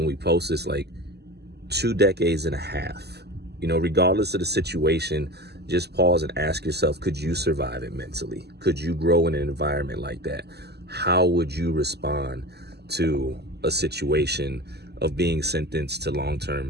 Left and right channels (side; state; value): left; late; 0.48 ms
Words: we post this, like 2 decades and a half, regardless of the situation, just pause and ask yourself, could you survive it mentally? Could you grow in an environment like that? How would you respond to a situation of being sentenced to